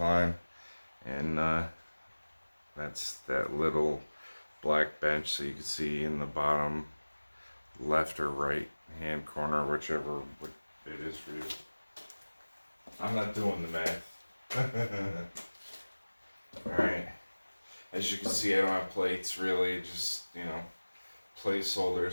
and that's that little black bench so you can see in the bottom left or right hand corner, whichever it is for you. I'm not doing the math. All right. As you can see, I don't have plates really, just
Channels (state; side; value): inverted; both; correlation -1.00